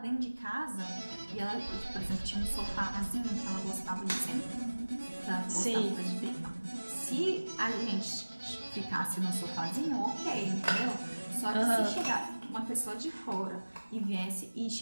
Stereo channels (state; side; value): inverted; both; correlation -1.00